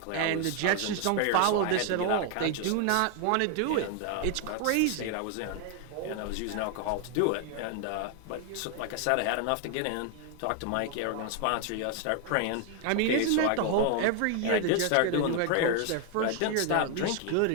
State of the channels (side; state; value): both; different; correlation 0.01